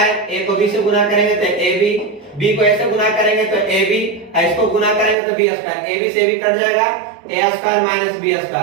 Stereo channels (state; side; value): drops out; left; at 5.2 s